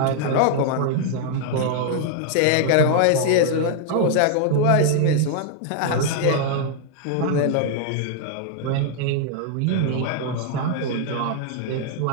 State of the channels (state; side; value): different; both; correlation 0.00